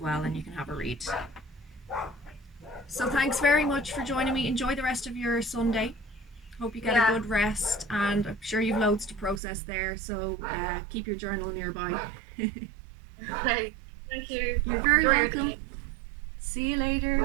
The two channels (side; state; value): left; drops out; at 9.4 s